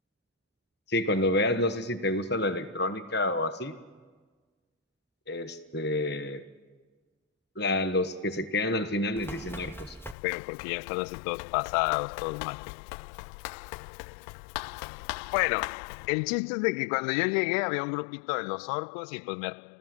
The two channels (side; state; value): right; drops out; at 10.2 s